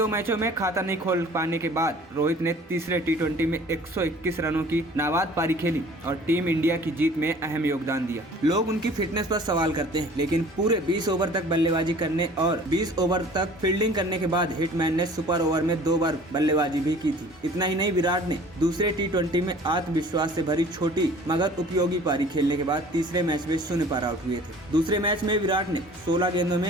मैचों में खाता नहीं खोल पाने के बाद रोहित ने तीसरे टी20 में 121 रनों की नाबाद पारी खेली और टीम इंडिया की जीत में अहम योगदान दिया। लोग उनकी फिटनेस पर सवाल करते हैं, लेकिन पूरे 20 ओवर तक बल्लेबाजी करने और 20 ओवर तक फील्डिंग करने के बाद हिटमैन ने सुपर ओवर में 2 बार बल्लेबाजी भी की थी। इतना ही नहीं, विराट ने दूसरे टी20 में आत्मविश्वास से भरी छोटी मगर उपयोगी पारी खेलने के बाद तीसरे मैच में 0 पर आउट हुए थे। दूसरे मैच में विराट ने 16 गेंदों में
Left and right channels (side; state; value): both; normal; correlation 0.49